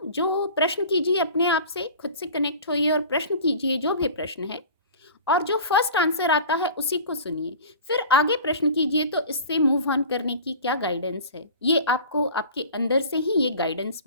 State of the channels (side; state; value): both; inverted; correlation -0.40